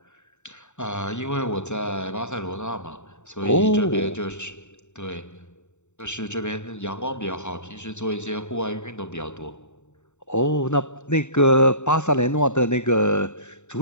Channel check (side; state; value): right; late; 0.84 ms